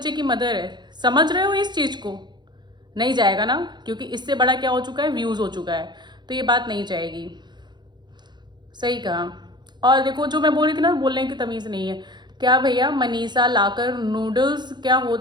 की मदर है, समझ रहे हो इस चीज़ को? नहीं जाएगा ना, क्योंकि इससे बड़ा क्या हो चुका है, व्यूज़ हो चुका है। तो ये बात नहीं जाएगी। सही कहा। और देखो जो मैं बोल रही थी ना, बोलने की तमीज़ नहीं है। क्या भैया, मनीषा लाकर नूडल्स क्या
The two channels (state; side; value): late; left; 0.21 ms